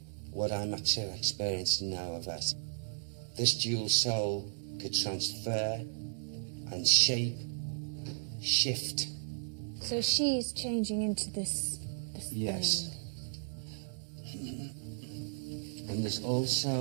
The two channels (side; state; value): left; silent; digital silence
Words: what I'm actually experiencing now of it. This dual soul could transfer and shape, shift. So she's changing into this Yes. thing. And there's